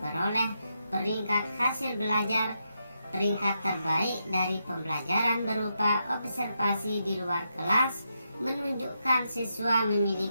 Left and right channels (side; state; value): both; inverted; correlation -0.83